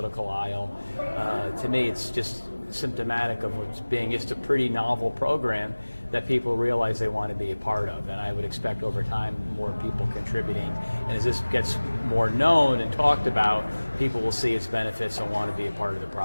aisle. To me, it's just symptomatic of what's being just a pretty novel program that people realize they want to be a part of. And I would expect over time more people contributing. And as this gets more known and talked about, people will see its benefits and want to be a part of the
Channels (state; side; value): inverted; both; correlation -1.00